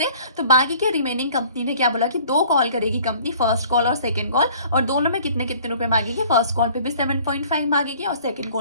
तो बाकी के रिमेनिंग कंपनी ने क्या बोला कि 2 कॉल करेगी कंपनी, फर्स्ट कॉल और सेकंड कॉल, और दोनों में कितने कितने रुपए मांगेगी, फर्स्ट कॉल पे भी 7.5 मांगेगी और सेकंड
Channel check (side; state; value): both; inverted; correlation -0.52